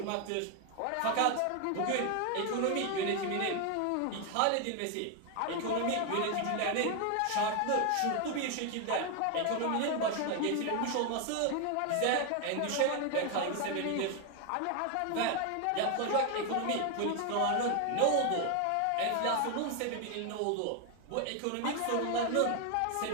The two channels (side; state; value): both; different; correlation 0.01